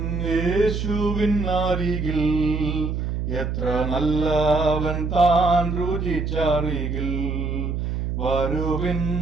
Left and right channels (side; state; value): right; noise; hum, 2 dB below the sound